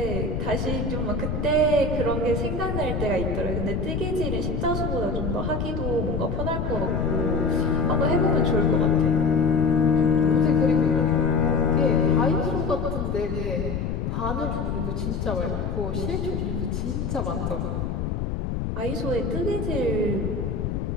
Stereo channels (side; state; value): left; noise; rumble, 2 dB below the sound